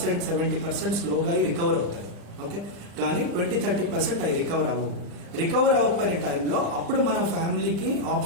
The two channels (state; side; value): late; left; 35 ms